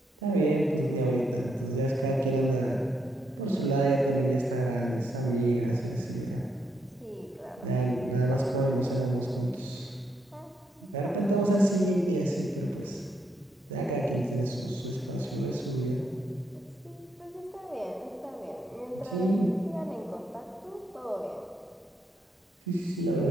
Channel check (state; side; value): normal; both; correlation 0.78